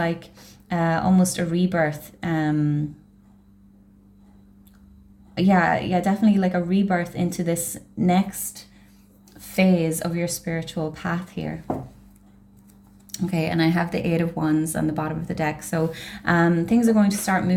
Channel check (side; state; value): both; identical; correlation 1.00